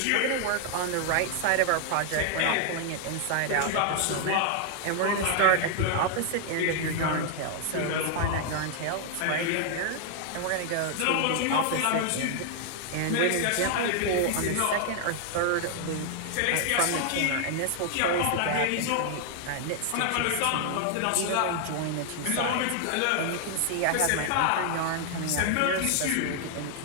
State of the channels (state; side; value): different; both; correlation 0.00